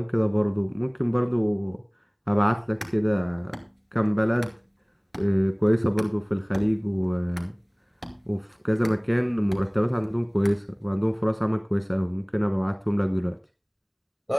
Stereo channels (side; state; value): both; identical; correlation 1.00